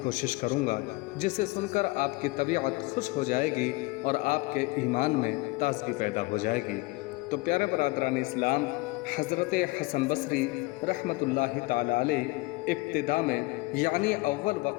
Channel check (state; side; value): quieter; right; 23.2 dB